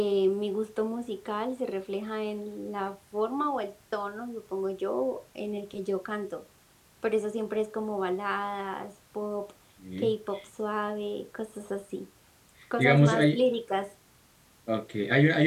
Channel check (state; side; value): identical; both; correlation 1.00